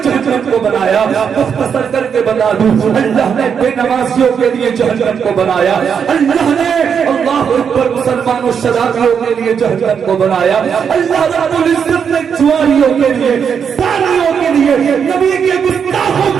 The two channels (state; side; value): quieter; left; 7.1 dB